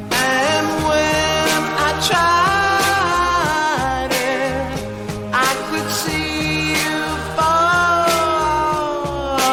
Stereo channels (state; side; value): identical; both; correlation 1.00